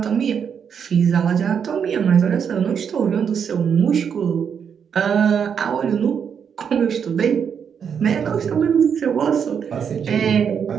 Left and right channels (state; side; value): quieter; left; 7.3 dB